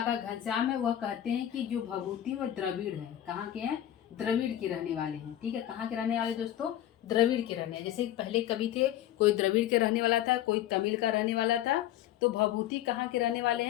घनश्याम है, वह कहते हैं कि जो भभूति वह द्रविड़ है। कहाँ के हैं? द्रविड़ के रहने वाले हैं। ठीक है, कहाँ के रहने वाले दोस्तों? द्रविड़ के रहने। जैसे पहले कवि थे, कोई द्रविड़ के रहने वाला था, कोई तमिल का रहने वाला था। तो भभूति कहाँ के रहने वाले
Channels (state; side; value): quieter; right; 12.3 dB